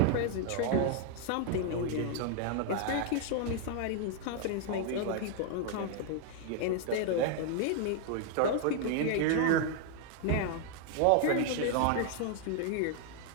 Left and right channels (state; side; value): different; both; correlation 0.00